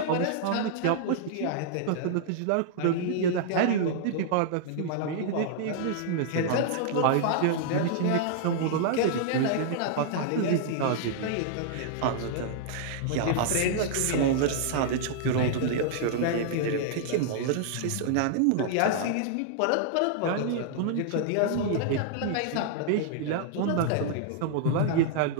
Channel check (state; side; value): different; both; correlation -0.01